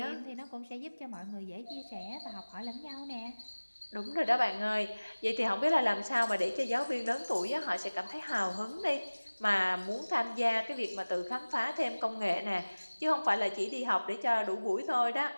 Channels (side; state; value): both; inverted; correlation -1.00